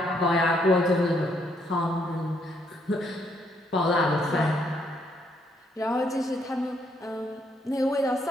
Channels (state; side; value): normal; both; correlation 0.72